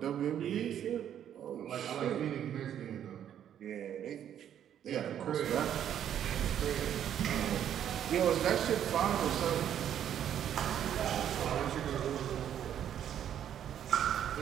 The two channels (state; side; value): quieter; left; 9.9 dB